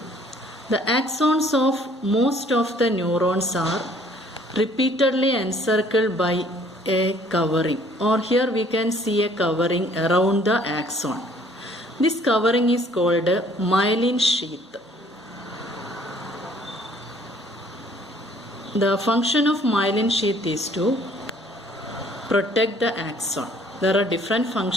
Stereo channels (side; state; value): both; normal; correlation 0.59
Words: the axons of most of the neurons are repeatedly encircled by a covering, or here we can see a covering around the axon. This covering is called a myelin sheath. The function of myelin sheath is to protect the axon. There are different